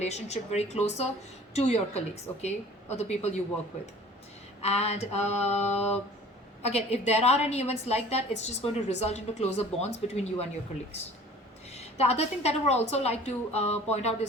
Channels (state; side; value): normal; both; correlation 0.47